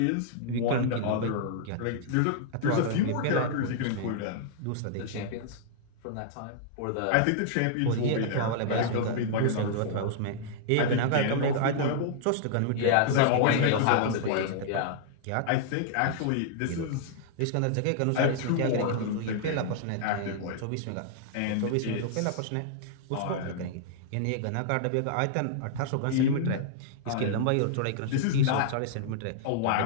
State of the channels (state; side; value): different; both; correlation -0.01